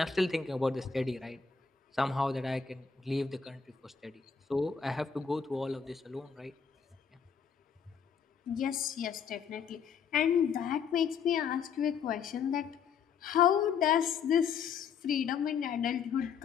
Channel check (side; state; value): right; quieter; 6.4 dB